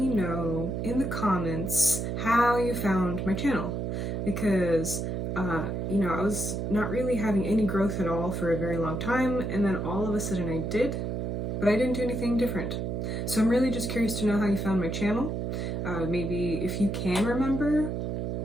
know in the comments how you found my channel, because I was not really having any growth at all for a very long time, and then all of a sudden I did, but I didn't do anything different. So I'm really just curious to know how you found my channel. Maybe if you can remember,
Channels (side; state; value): right; noise; hum, 2 dB below the sound